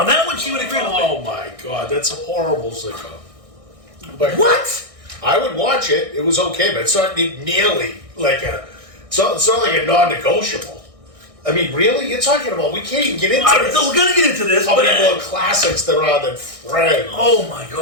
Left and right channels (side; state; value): left; late; 1.6 ms